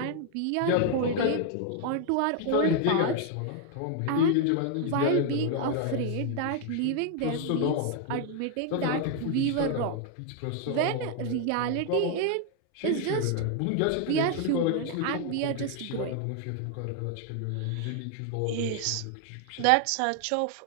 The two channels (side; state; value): both; different; correlation 0.00